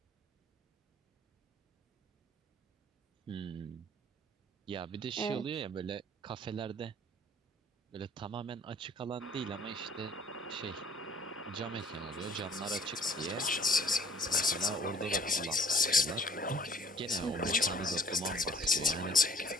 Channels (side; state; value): both; normal; correlation 0.54